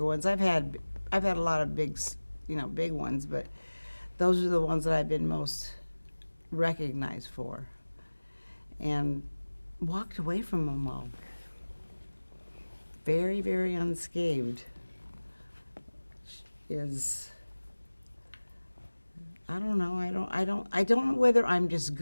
ones. I've had a lot of big ones, but those are the ones that I've been most recognized for, and walked away from them all very, very unscathed. I don't know. I don't know whether I'm just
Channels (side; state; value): both; inverted; correlation -1.00